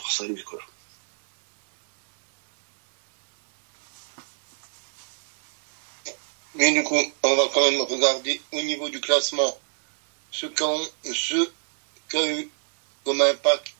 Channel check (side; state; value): left; silent; 62 dB below the other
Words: à lui, quoi. Mais du coup, on va quand même regarder au niveau du classement ce qu'a eu comme